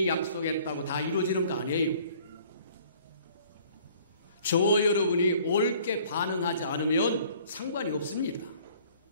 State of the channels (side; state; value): both; inverted; correlation -0.55